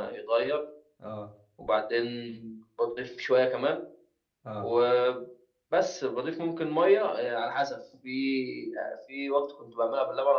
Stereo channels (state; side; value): identical; both; correlation 1.00